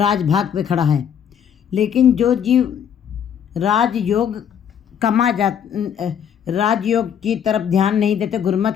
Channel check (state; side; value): quieter; right; 8.5 dB